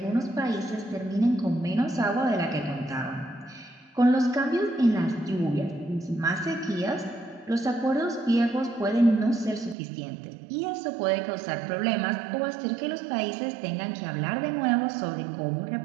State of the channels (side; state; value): left; drops out; at 9.8 s